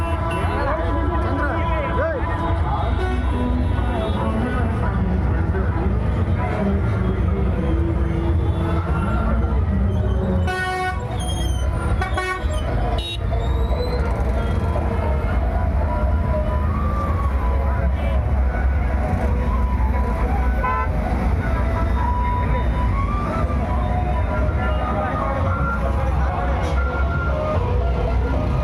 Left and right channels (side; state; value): both; identical; correlation 1.00